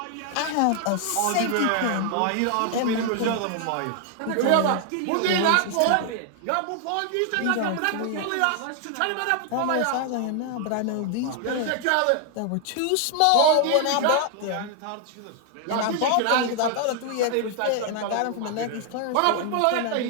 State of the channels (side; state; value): both; different; correlation 0.00